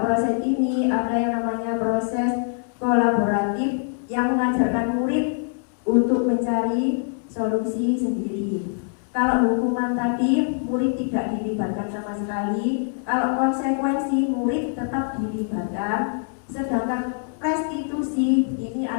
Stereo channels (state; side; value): silent; right; 63 dB below the other